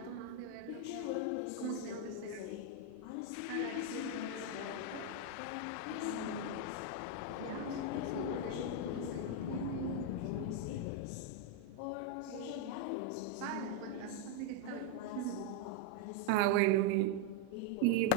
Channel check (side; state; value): both; different; correlation 0.01